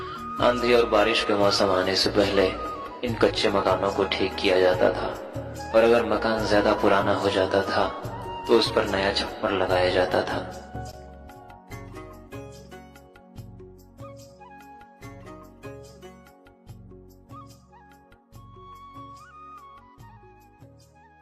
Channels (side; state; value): both; identical; correlation 1.00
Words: आंधी और बारिश के मौसम आने से पहले इन कच्चे मकानों को ठीक किया जाता था और अगर मकान ज्यादा पुराना हो जाता था तो उस पर नया छप्पर लगाया जाता था।